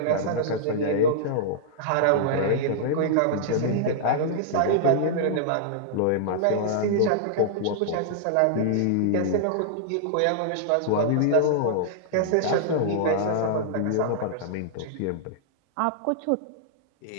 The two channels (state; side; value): different; both; correlation -0.01